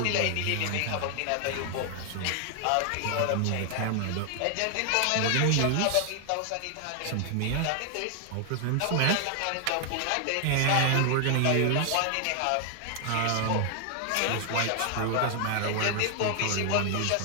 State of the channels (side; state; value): both; different; correlation 0.00